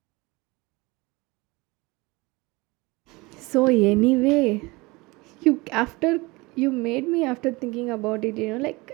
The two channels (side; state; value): left; quieter; 23.8 dB